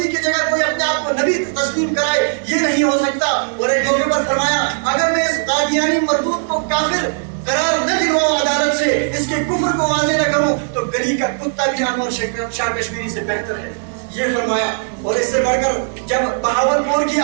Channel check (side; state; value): left; silent; digital silence